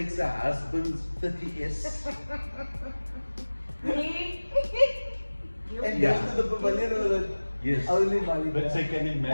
a husband's 30S? Me? And Yeah. goes to the pavilion with it. Yes. Only Malikah. But so you can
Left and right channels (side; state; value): both; inverted; correlation -1.00